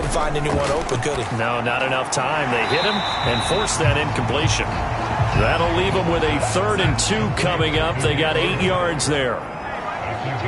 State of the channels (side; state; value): both; identical; correlation 1.00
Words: find anyone open, could he? No, not enough time. They hit him and forced that incompletion. That'll leave them with a 3rd and 2 coming up. They got 8 yards there.